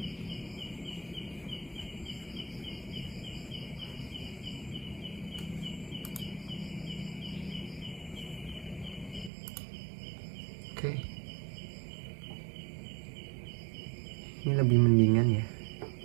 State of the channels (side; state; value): left; drops out; at 9.3 s